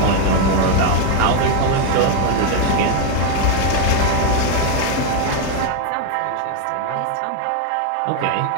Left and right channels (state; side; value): different; both; correlation 0.01